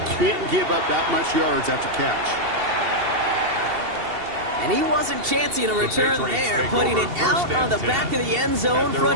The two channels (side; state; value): left; late; 2.7 ms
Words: can't give up that much yards after catch. And he wasn't chancing a return there, putting it out on the back of the end zone for